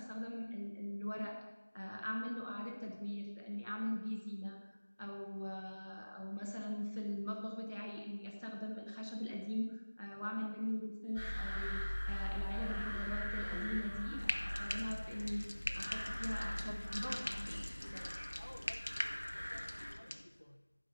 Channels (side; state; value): both; inverted; correlation -1.00